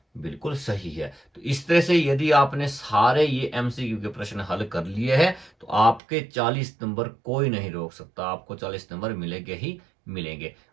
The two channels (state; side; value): drops out; left; at 6.0 s